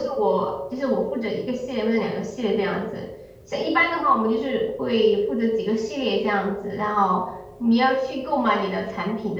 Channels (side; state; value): both; identical; correlation 1.00